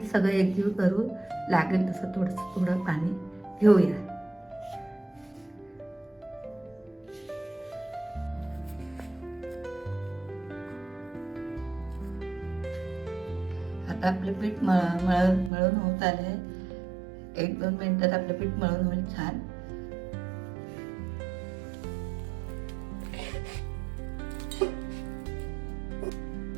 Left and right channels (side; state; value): left; drops out; at 15.5 s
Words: सगळं एकजीव करू. लागेल तसं थोडं पाणी घेऊया. आता आपलं पीठ मळून होत आले. 1-2 मिनिटात आपलं पीठ मळून होईल छान.